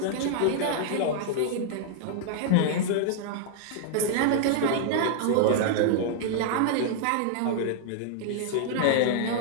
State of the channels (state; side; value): different; both; correlation -0.01